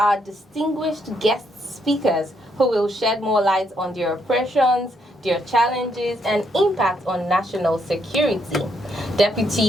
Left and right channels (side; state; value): both; normal; correlation 0.75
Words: distinguished guest speakers who will shed more light on their operations, their challenges, and impact on national security.